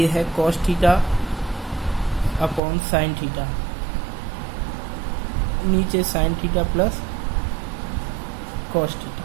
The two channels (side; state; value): left; drops out; at 2.6 s